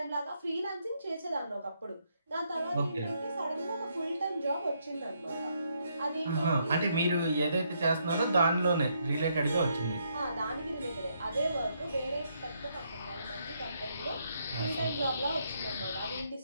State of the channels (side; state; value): both; inverted; correlation -0.75